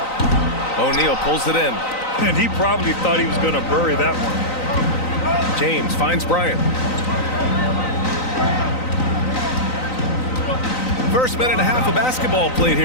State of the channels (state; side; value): late; right; 3.9 ms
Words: O'Neal pulls it in. And he probably thought he was going to bury that one. James finds Bryant. First minute and a half of basketball played